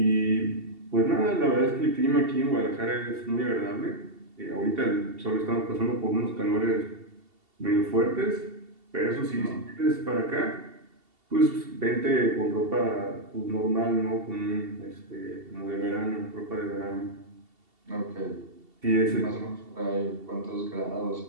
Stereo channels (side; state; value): left; late; 2.7 ms